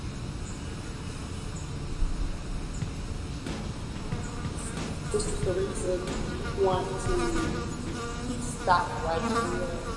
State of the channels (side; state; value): both; identical; correlation 1.00